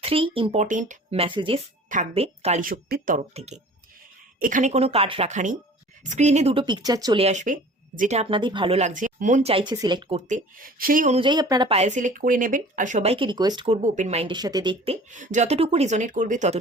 3 ইম্পর্টেন্ট মেসেজেস থাকবে কালী শক্তির তরফ থেকে। এখানে কোনো কার্ড রাখা নেই, স্ক্রিনে দুটো পিকচার চলে আসবে, যেটা আপনাদের ভালো লাগছে, মন চাইছে সিলেক্ট করতে, সেই অনুযায়ী আপনারা পায়েল সিলেক্ট করে নেবেন। আর সবাইকে রিকোয়েস্ট করব ওপেন মাইন্ডের সাথে দেখতে, যতটুকু রিজনেট করবে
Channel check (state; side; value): normal; both; correlation 0.45